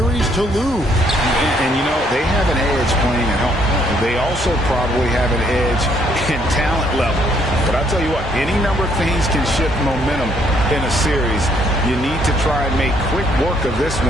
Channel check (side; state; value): both; normal; correlation 0.68